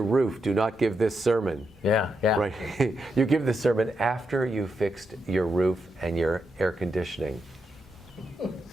roof, do not give this sermon. Yeah. Right. You give the sermon after you fixed your roof and your air conditioning.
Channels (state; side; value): normal; both; correlation 0.84